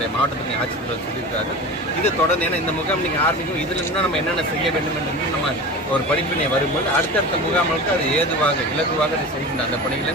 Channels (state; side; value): normal; both; correlation 0.32